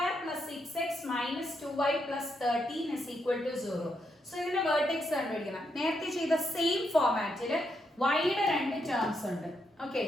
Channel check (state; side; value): normal; both; correlation 0.80